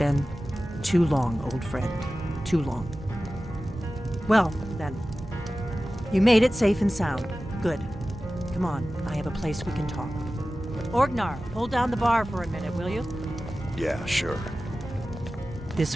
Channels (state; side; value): normal; both; correlation 0.95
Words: too long, old friend. Too long. Well, then. You made it safe and sound. Good. Come on, I have a place we can talk. Orgnar, hold down the bar for a minute, will you? Yeah, sure.